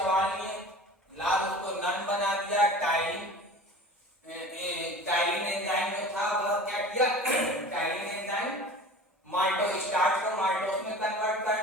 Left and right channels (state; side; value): normal; both; correlation 0.39